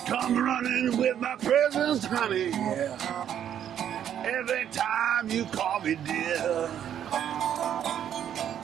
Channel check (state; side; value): quieter; left; 9.8 dB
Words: come running with my presents, honey, every time you call me dear.